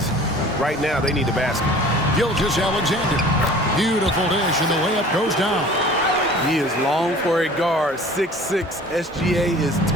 Right now, they need a basket. Gilgeous-Alexander. Beautiful dish, and the layup goes down. He is long for a guard. 6'6". SGA is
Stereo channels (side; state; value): both; normal; correlation 0.46